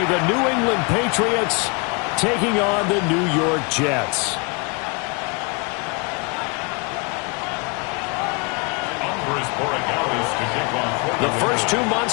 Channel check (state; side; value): quieter; right; 31.8 dB